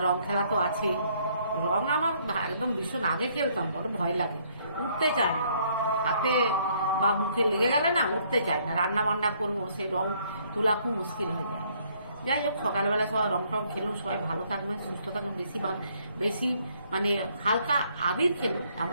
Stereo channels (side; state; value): both; inverted; correlation -0.66